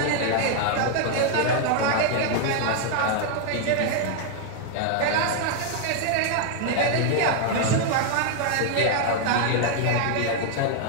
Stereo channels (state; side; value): different; both; correlation 0.00